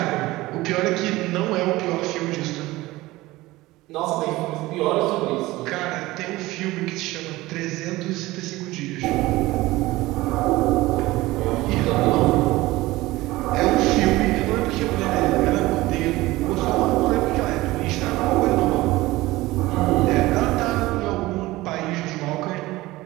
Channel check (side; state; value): left; quieter; 18.9 dB